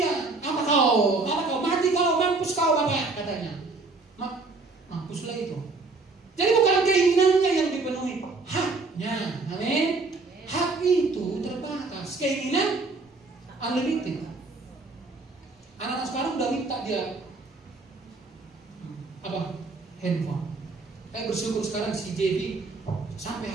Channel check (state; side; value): quieter; left; 3.7 dB